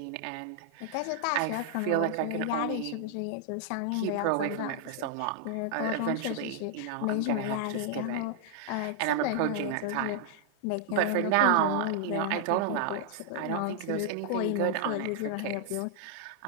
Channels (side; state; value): both; different; correlation -0.01